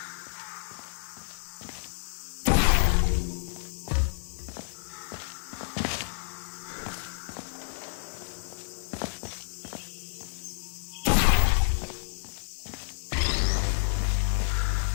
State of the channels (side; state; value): right; silent; digital silence